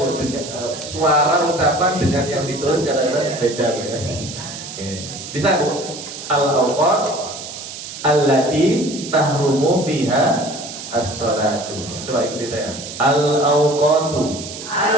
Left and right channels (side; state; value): right; noise; hiss, 10 dB below the sound